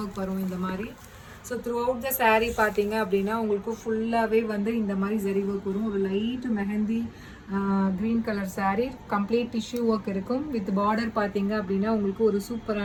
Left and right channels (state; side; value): identical; both; correlation 1.00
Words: ஒர்க் வரும் இந்த மாதிரி. So through out the saree பார்த்தீங்க அப்படின்னா உங்களுக்கு ஃபுல்லாகவே வந்து இந்த மாதிரி ஜரி ஒர்க் வரும். ஒரு light mehndi green colour saree, complete tissue work இருக்கும். வித் பார்டர் பார்த்தீங்க அப்படின்னா உங்களுக்கு ஒரு